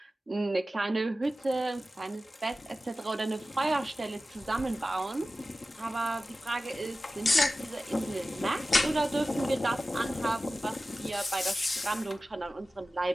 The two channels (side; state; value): both; normal; correlation 0.95